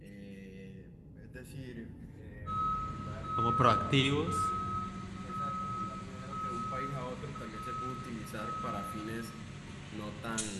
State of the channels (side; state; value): both; identical; correlation 1.00